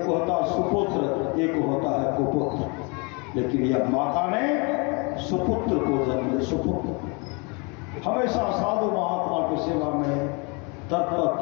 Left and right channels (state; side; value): quieter; right; 31.7 dB